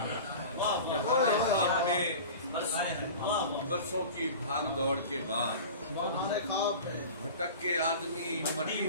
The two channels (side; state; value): both; inverted; correlation -0.36